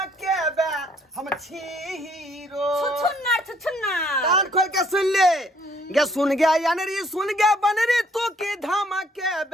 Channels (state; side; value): normal; both; correlation 0.64